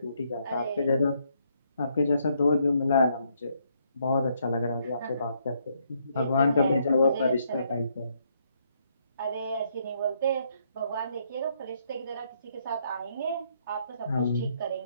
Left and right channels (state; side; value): inverted; both; correlation -0.72